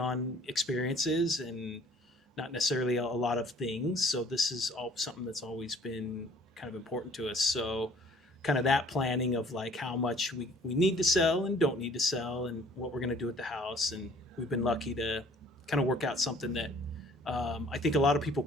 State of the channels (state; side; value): normal; both; correlation 0.55